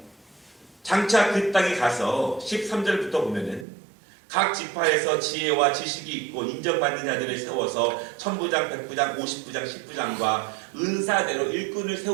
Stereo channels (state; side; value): drops out; left; at 3.7 s